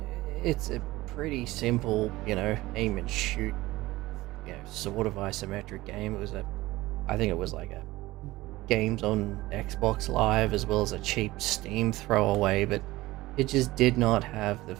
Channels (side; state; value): left; quieter; 18.5 dB